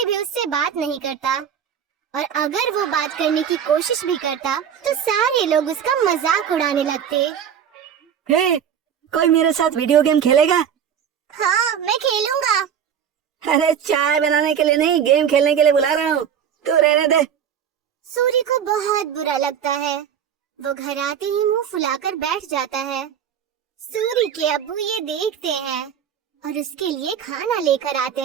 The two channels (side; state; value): left; quieter; 8.4 dB